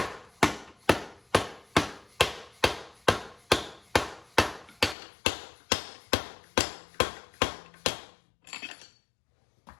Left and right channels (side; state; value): right; drops out; at 5.0 s